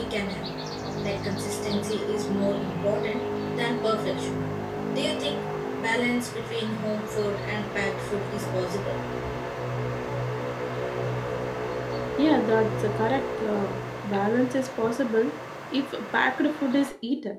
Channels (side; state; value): both; identical; correlation 1.00